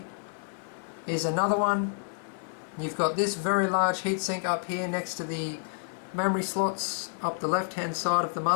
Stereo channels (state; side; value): silent; right; digital silence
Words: is another one. You've got this very large heatsink up here next to the memory slots up the left hand side of the